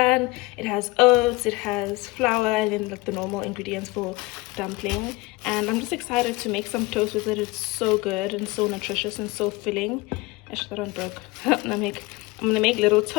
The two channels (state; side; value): quieter; right; 22.8 dB